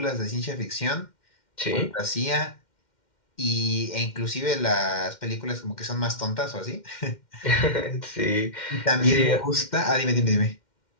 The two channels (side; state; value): right; late; 2.1 ms